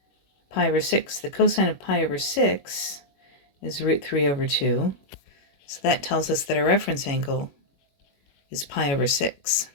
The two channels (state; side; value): late; right; 21 ms